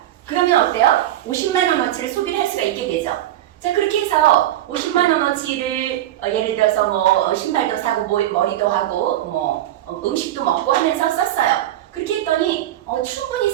그러면 어때요? 50만 원어치를 소비를 할 수가 있게 되죠. 자, 그렇게 해서 50만 원어치를 예를 들어서 신발도 사고 머리도 하고 음식도 먹고 하면서 썼어요. 그렇게 했더니 충분히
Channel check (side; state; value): left; quieter; 13.2 dB